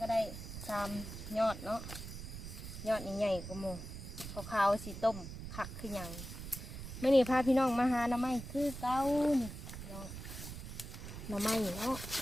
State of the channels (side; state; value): right; noise; rumble, 9 dB below the sound